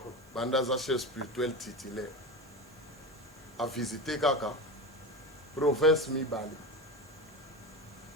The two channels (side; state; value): right; noise; hiss, 28 dB below the sound